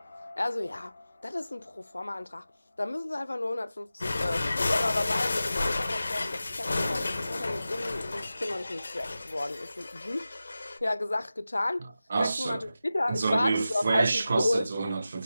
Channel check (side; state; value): both; inverted; correlation -0.94